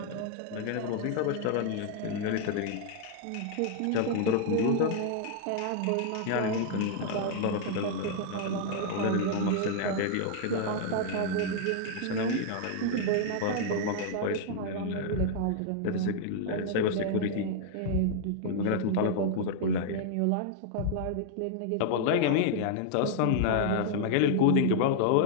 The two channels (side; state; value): both; different; correlation 0.00